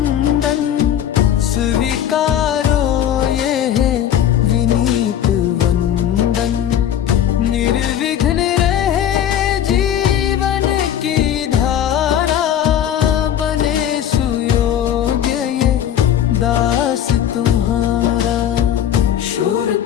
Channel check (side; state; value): right; quieter; 10.2 dB